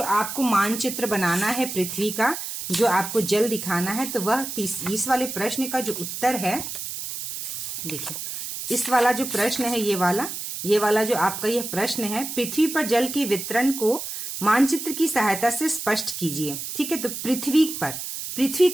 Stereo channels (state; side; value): noise; right; hiss, 6 dB below the sound